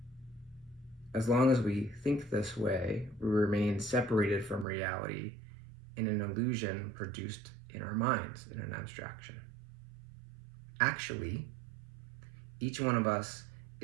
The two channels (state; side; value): drops out; left; at 4.7 s